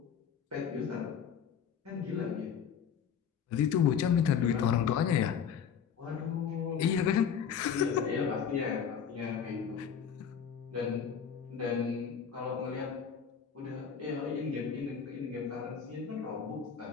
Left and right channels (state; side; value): quieter; right; 7.5 dB